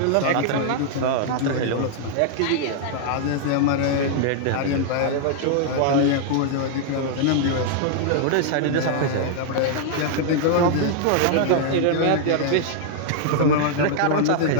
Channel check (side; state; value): both; different; correlation -0.01